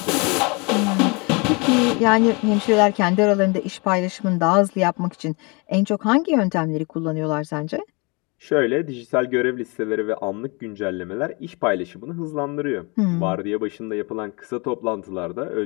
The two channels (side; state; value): right; quieter; 29.7 dB